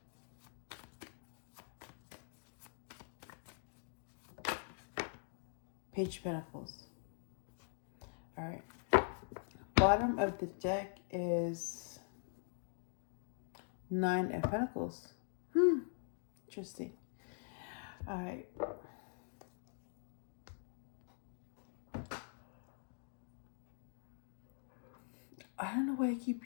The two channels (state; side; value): silent; right; digital silence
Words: Page of Pentacles. All right. Bottom of the deck is Nine of Pentacles. Interesting. All right. I don't know why I